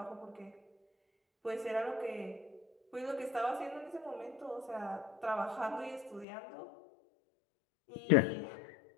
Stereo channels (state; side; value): drops out; right; at 6.2 s